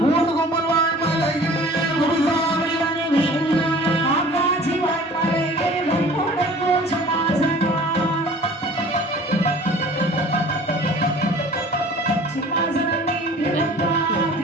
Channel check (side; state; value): both; normal; correlation 0.47